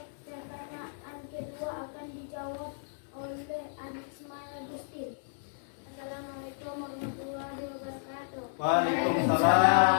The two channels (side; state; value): right; silent; digital silence